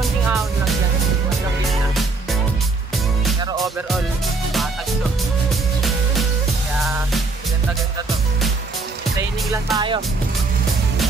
ahon lang yan. Walang na. Pero overall, patag to. Kaya, ganda-ganda to. Training lang tayo.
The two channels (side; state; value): left; quieter; 3.7 dB